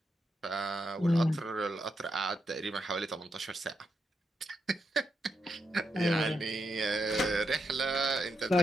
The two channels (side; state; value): both; normal; correlation 0.83